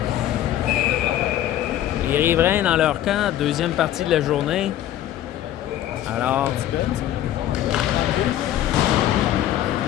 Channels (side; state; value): right; quieter; 12.4 dB